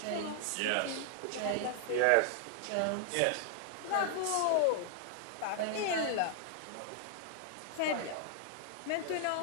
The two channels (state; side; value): different; both; correlation -0.01